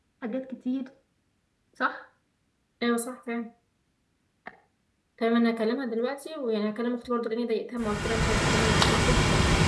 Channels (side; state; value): both; identical; correlation 1.00